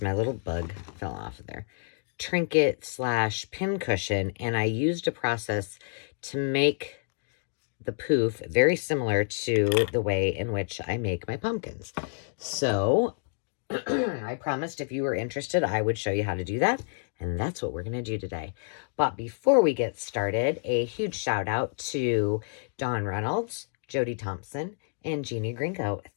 my little bug fell off of there. Trinket / pin cushion, and I used a process to make the poof very similar to the way in which I make my pumpkins. So I promised if you were interested, I would show you how to do that. And that's what we're going to do today. But before we get started, a huge shout out to Dawn Reynolds, Jody Thompson, and Jeannie Gringo.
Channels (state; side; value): silent; right; digital silence